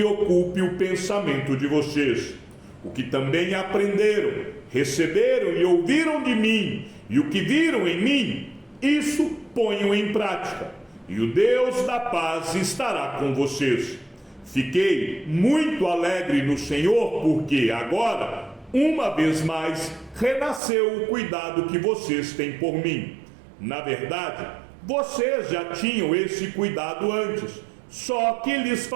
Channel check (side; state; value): left; drops out; at 20.6 s